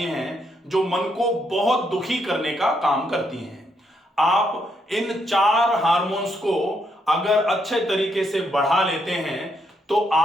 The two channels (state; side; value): normal; both; correlation 0.76